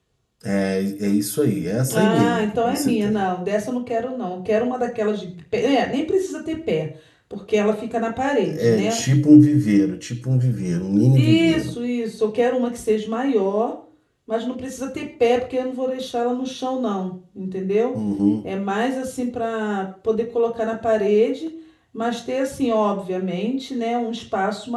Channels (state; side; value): identical; both; correlation 1.00